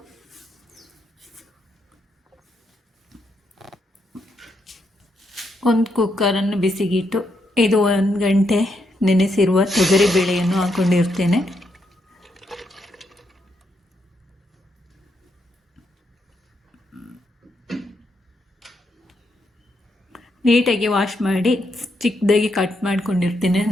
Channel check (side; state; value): both; normal; correlation 0.79